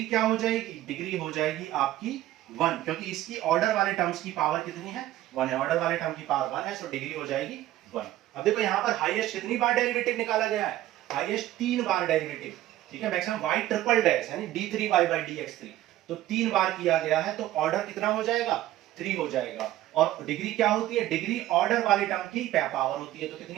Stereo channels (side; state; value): left; quieter; 14.5 dB